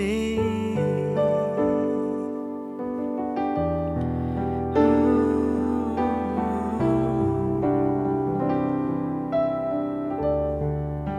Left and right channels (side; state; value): both; identical; correlation 1.00